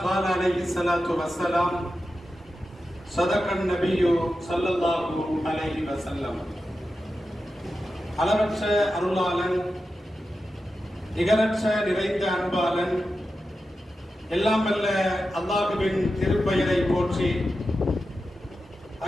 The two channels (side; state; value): both; normal; correlation 0.91